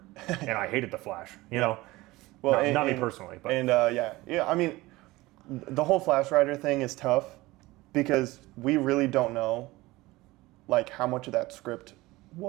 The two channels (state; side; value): quieter; left; 19.9 dB